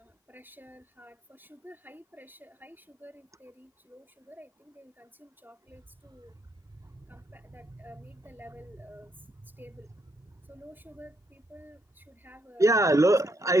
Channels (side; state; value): both; normal; correlation 0.76